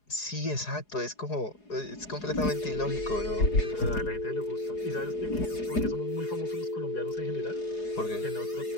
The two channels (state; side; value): late; right; 4.8 ms